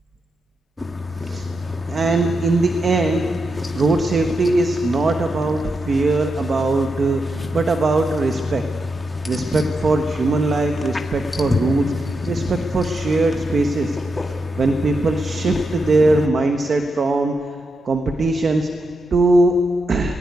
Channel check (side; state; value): both; normal; correlation 0.85